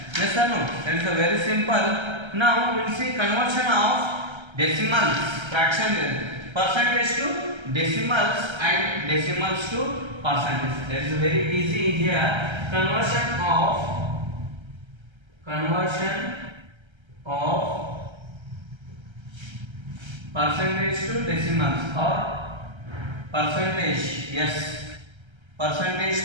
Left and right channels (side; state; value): left; late; 1.3 ms